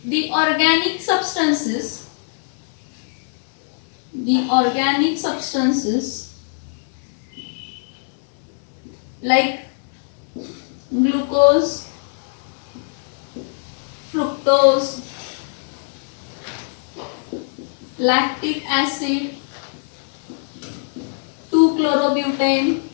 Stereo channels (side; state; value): right; silent; digital silence